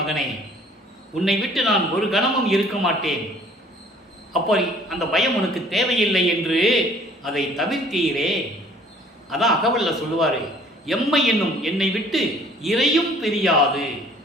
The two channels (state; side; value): normal; both; correlation 0.54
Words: உன்னை விட்டு நான் ஒரு கணமும் இருக்க மாட்டேன். அப்போ அந்த பயம் உனக்கு தேவையில்லை என்று அதை தவிர்த்தீரே. அதான் அகவல்ல சொல்லுவார், எம்மை என்னும் என்னை விட்டு இறையும் பிரியாது,